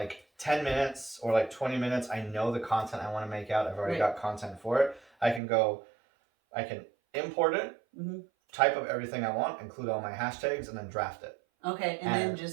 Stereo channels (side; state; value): left; drops out; at 5.4 s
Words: 10 minutes or like 20 minutes, I know the content I want to make out. I've already got content for it. I can import it, type up everything I want, include all my hashtags, and then draft it. Okay, and then